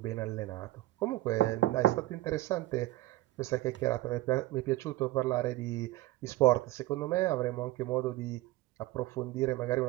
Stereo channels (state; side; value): quieter; left; 17.1 dB